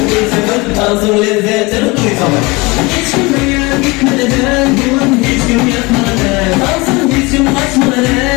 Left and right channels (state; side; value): quieter; right; 24.6 dB